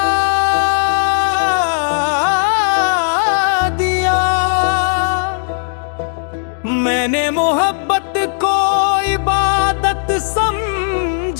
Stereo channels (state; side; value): silent; right; digital silence